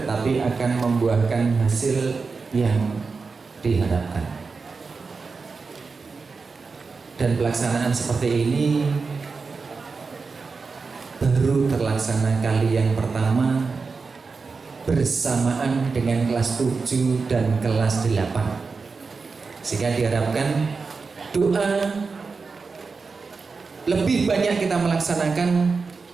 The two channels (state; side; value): quieter; left; 4.6 dB